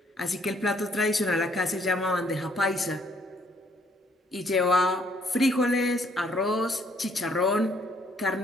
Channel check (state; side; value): normal; both; correlation 0.66